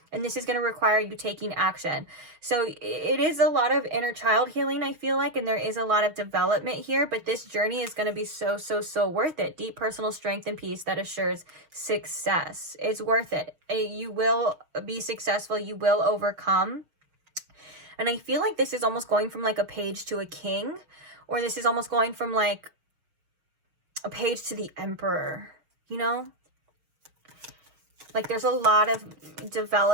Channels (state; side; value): late; left; 6.3 ms